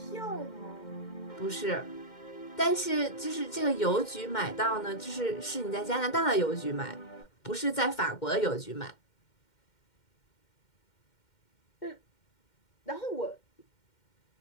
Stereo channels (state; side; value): late; right; 2.1 ms